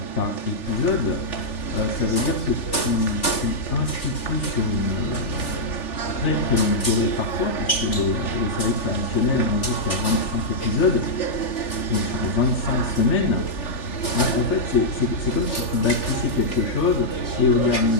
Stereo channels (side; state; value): right; late; 3.4 ms